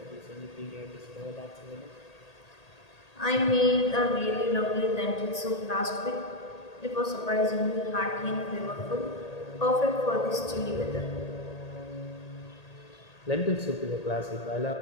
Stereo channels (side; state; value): right; late; 1.8 ms